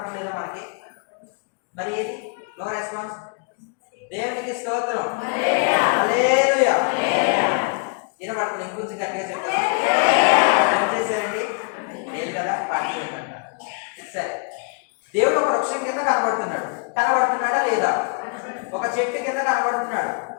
మనకి? మరి ఏది? No response. దేవునికి స్తోత్రం. హల్లెలూయా. వినబడుతుంది. ఇంకొంచెం గట్టిగా చెప్తారు. ఏం చేశారండి? లేదు కదా, పాటి. సరే, దేవుడు ఒక వృక్షం కింద కనబడుతున్నాడు. కనబడుతున్నాడా లేదా? ఒక చెట్టు కింద కనబడుతున్నాడు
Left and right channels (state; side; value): quieter; right; 38.2 dB